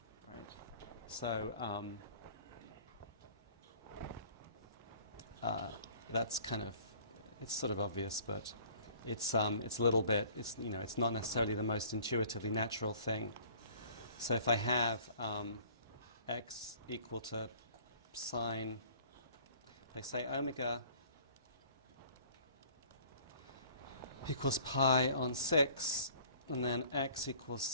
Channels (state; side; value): inverted; both; correlation -0.52